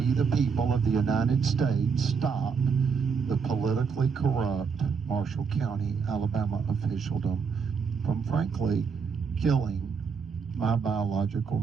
the people of the United States, stop the politically corrupt Marshall County, Alabama officialdom from frankly killing my biological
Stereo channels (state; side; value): quieter; left; 5.8 dB